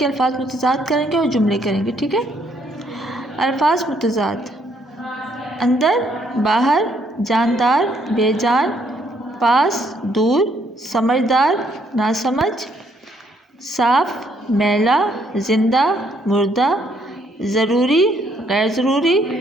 الفاظ متضاد کریں گے اور جملے کریں گے، ٹھیک ہے؟ الفاظ متضاد: اندر، باہر، جاندار، بے جان، پاس، دور، سمجھدار، ناسمجھ، صاف، میلا، زندہ، مردہ، ضروری، غیر ضروری،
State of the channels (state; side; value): normal; both; correlation 0.69